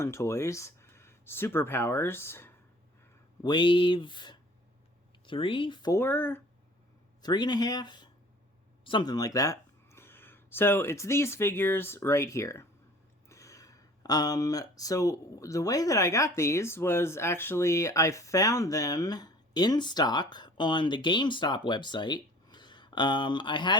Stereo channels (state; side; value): normal; both; correlation 0.49